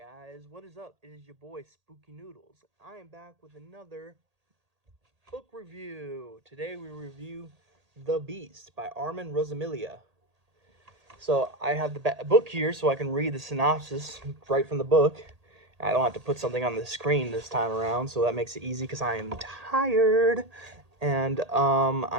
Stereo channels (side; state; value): left; late; 1.8 ms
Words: What is up? It is your boy Spooky Noodles. I am back with another book review. Today we review The Beast by Armand Rosamilia. So I have the book here so I can read the synopsis right from the book. I don't have to put something on the screen this time around, so that makes it easy because I am tired and